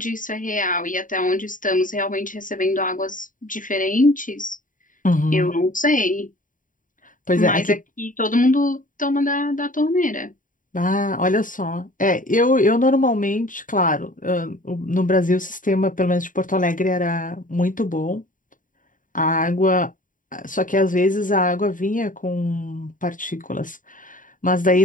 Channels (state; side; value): late; right; 0.39 ms